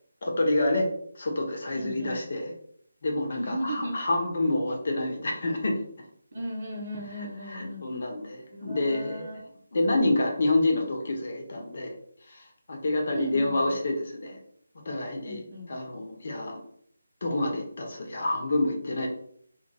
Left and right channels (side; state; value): both; inverted; correlation -0.89